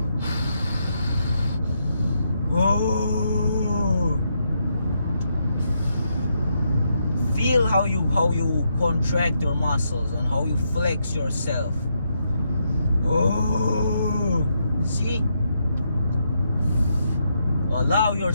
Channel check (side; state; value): both; inverted; correlation -0.79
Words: Feel how you contract your muscles and how you flex yourself. Oh, see? Allow